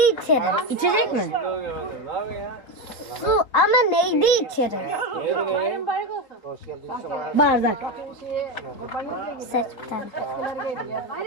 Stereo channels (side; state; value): right; late; 3.7 ms